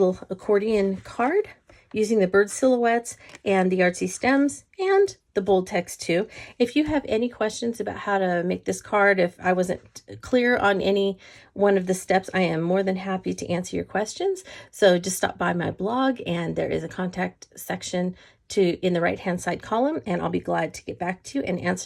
accordion card using the bird silhouettes and the Artsy Stems and the bold text too. If you have any questions about how to make this card, if I wasn't clear on any one of the steps, I am more than happy to answer your questions. So just stop by my blog, and there is a contact section in the right hand side column, and I'll be glad to get back to you and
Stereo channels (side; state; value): both; identical; correlation 1.00